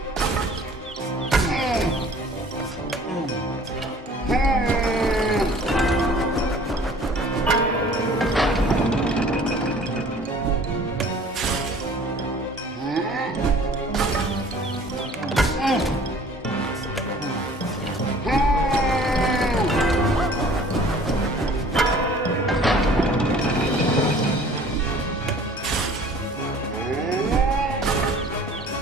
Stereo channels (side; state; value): both; normal; correlation 0.50